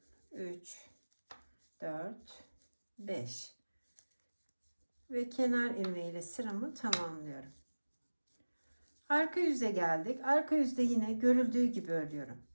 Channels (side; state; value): both; inverted; correlation -1.00